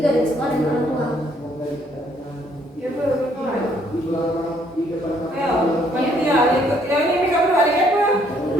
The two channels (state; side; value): normal; both; correlation 0.67